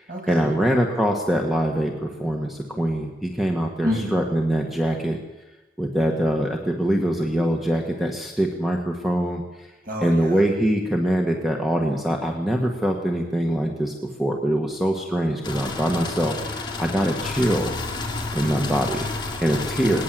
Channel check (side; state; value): both; normal; correlation 0.85